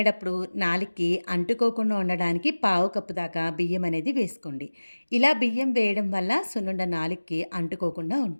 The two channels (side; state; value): both; inverted; correlation -1.00